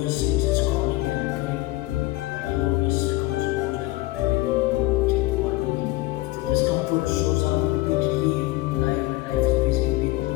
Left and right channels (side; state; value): right; quieter; 19.2 dB